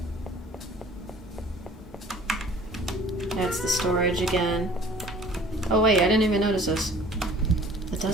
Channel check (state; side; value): normal; both; correlation 0.50